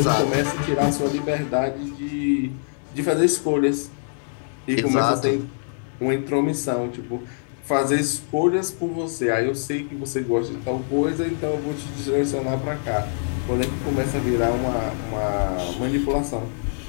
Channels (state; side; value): silent; right; digital silence